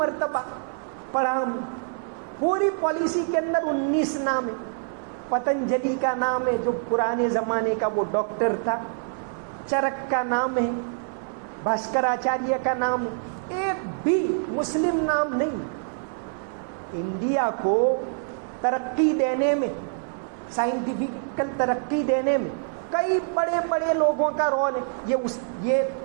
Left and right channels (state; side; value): silent; left; 60 dB below the other